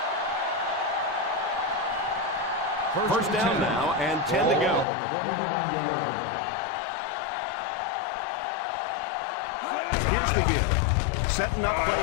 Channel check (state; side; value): drops out; right; at 4.9 s